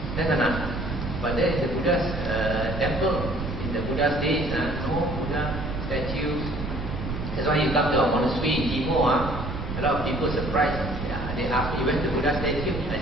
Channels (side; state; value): right; noise; rumble, 5 dB below the sound